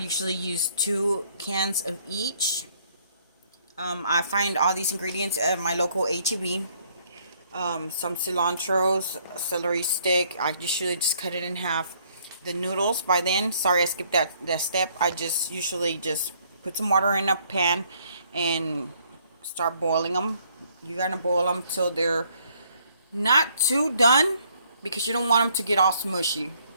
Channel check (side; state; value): both; inverted; correlation -0.65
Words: use 2 cans of each. I find all these ingredients at my local HEB. Some cilantro, celery stick. I usually just cut it in half. The noodles, by then, sorry I skipped that step. I just usually just put some water in a pan and start boiling them. You're going to boil them till they're not too done, because you don't want them to get all smushy.